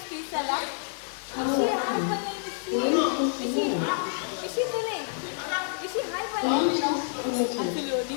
ಈ ಸಲ ಇಶಿ ಹಾಯ್ ಬನ್ನಿ ಇಶಿ ತುಲೆ ಇಶಿ ಹಾಯ್ ಬನ್ನಿ ಅಸಲು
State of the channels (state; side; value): silent; right; 59 dB below the other